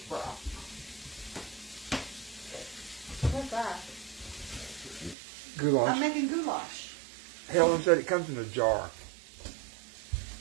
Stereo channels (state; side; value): drops out; left; at 5.2 s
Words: broth. What's that? Goulash. I'm making goulash. Helen said it comes in a jar.